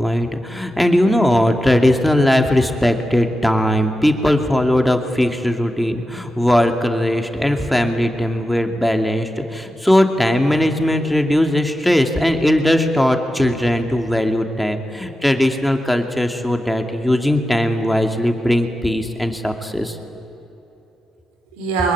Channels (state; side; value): normal; both; correlation 0.90